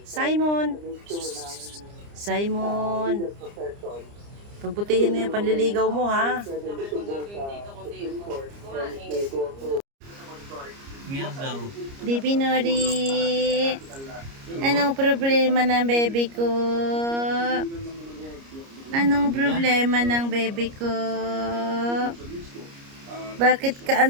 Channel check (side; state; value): left; late; 29 ms